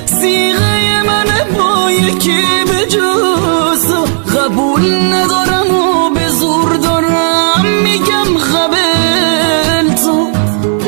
صیغه منه، با یکی به جز قبول ندارم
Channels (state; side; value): silent; left; digital silence